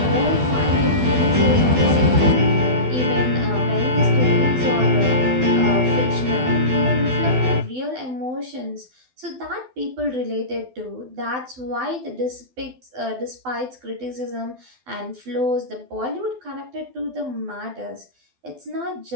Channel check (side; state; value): left; late; 12 ms